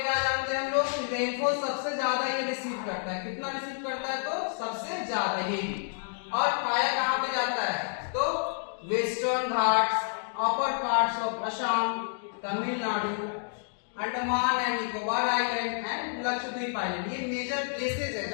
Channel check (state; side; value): silent; right; digital silence